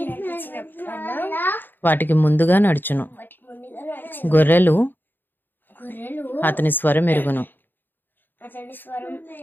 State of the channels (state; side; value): late; right; 0.093 ms